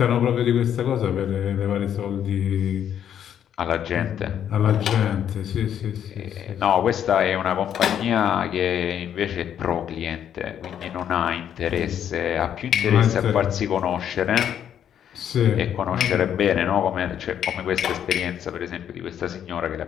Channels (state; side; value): quieter; right; 9.5 dB